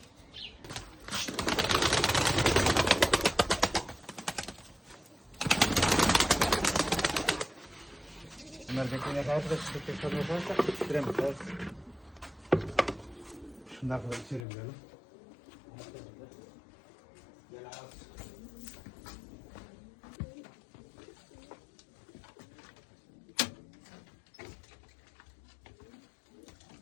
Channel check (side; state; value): right; drops out; at 14.5 s